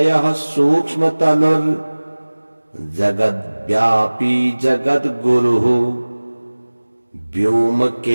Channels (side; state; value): both; inverted; correlation -1.00